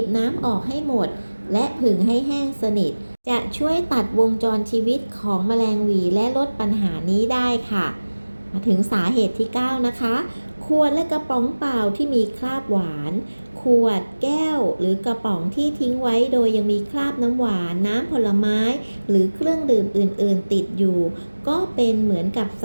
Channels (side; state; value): both; inverted; correlation -1.00